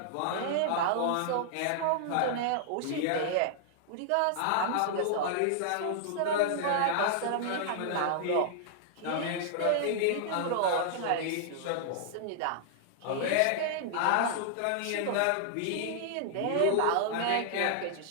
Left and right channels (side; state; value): both; different; correlation -0.01